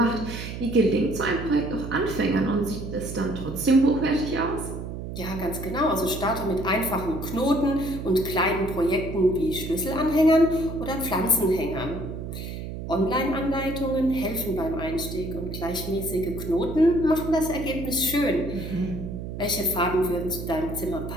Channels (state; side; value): noise; right; hum, 7 dB below the sound